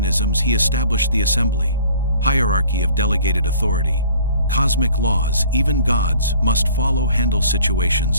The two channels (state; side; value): inverted; both; correlation -0.51